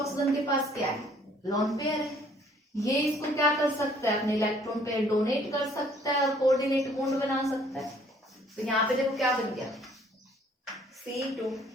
के पास क्या है, लोन पेयर है, ये इसको क्या कर सकता है, अपने इलेक्ट्रॉन पेयर डोनेट कर सकता है और कोऑर्डिनेट बॉन्ड बना सकता है। तो यहाँ पे देखो क्या बन गया,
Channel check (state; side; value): normal; both; correlation 0.59